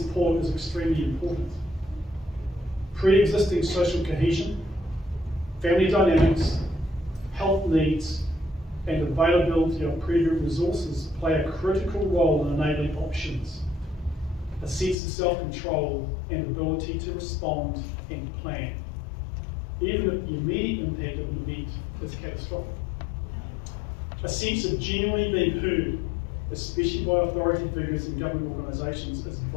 is extremely important, pre-existing social cohesion, family dynamics, health needs, and availability of pre-group resources play a critical role in enabling options, a sense of self-control and ability to respond and plan, even if the immediate impact of an event is catastrophic. A sense of genuinely being heard, especially by authority figures and government organisations, is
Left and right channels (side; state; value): right; drops out; at 15.0 s